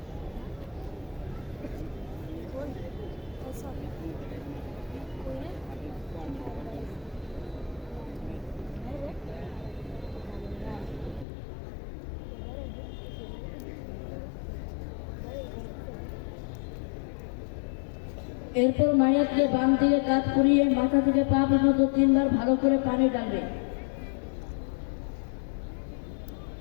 এরপর মাইয়াতকে বাম দিকে কাত করিয়ে মাথা থেকে পা পর্যন্ত 3 বার ভালো করে পানি ডালবে।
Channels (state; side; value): drops out; right; at 11.2 s